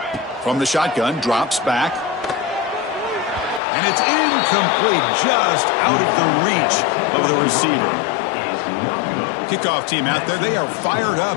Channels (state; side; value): drops out; right; at 3.6 s